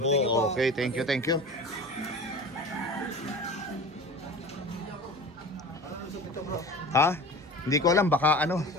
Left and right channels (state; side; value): normal; both; correlation 0.36